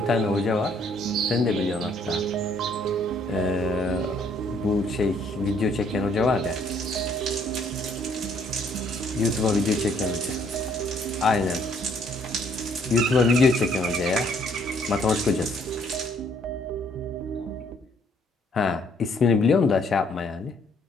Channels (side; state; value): both; normal; correlation 0.65